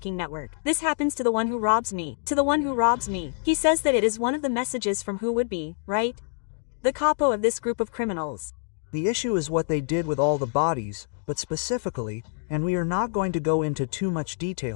network. This happens to the one who robs me, to the one who robs me. He says that it is one of the messages from who would be, right? The capo of this group of criminals. The issue is what they did with all the bodies, but specifically, and we are not going to go into too much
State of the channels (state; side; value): silent; right; digital silence